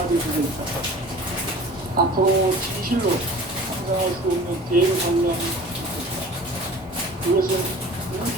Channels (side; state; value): both; normal; correlation 0.43